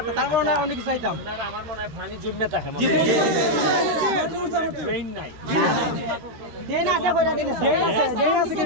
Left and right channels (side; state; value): left; late; 13 ms